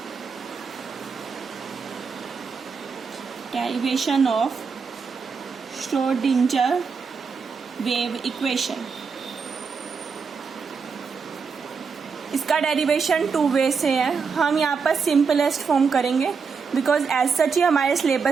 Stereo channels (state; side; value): quieter; left; 5.5 dB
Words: Derivation of Schrödinger wave equation. इसका derivation 2 वे से है. हम यहाँ पर सिंपलेस्ट फॉर्म करेंगे बिकॉज एज सच ही हमारे